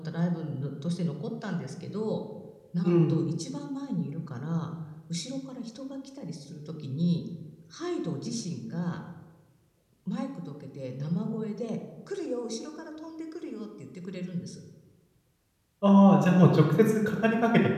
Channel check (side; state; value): both; identical; correlation 1.00